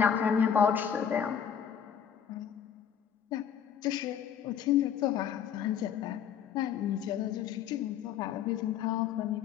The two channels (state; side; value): quieter; right; 8.4 dB